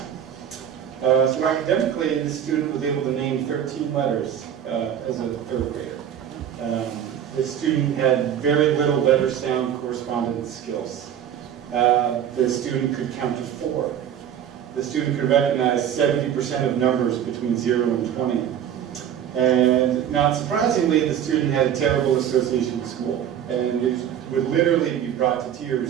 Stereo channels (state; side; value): quieter; left; 9.6 dB